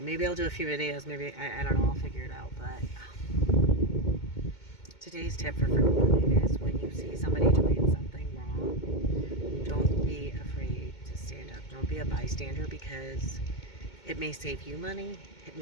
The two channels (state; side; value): late; right; 2.2 ms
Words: I'll do a few videos. Maybe, I don't know, I'll figure it out. But today's tip for frugal living is when you see somebody doing something wrong, don't be afraid to stand up. Don't be a bystander, because it may save you money. It